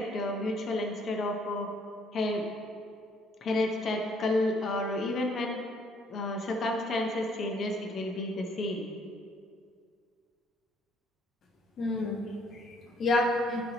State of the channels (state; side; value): normal; both; correlation 0.64